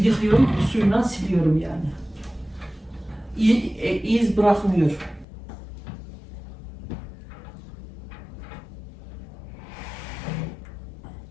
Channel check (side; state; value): right; drops out; at 5.2 s